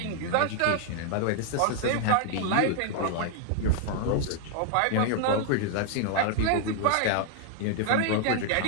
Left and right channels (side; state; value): both; different; correlation 0.00